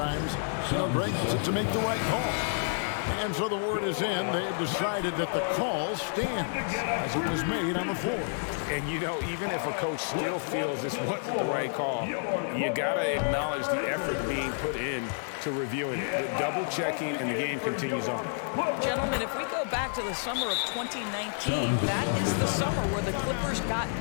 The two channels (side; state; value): right; silent; digital silence